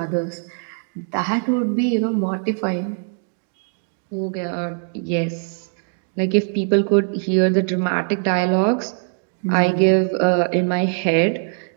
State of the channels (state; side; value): silent; left; 58 dB below the other